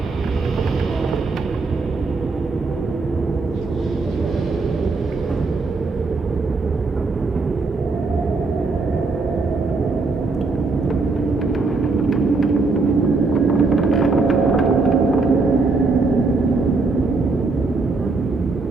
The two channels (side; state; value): left; quieter; 3.8 dB